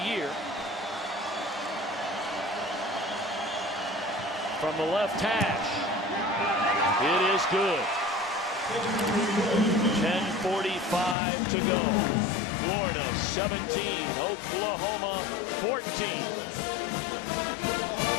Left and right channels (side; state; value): right; drops out; at 11.2 s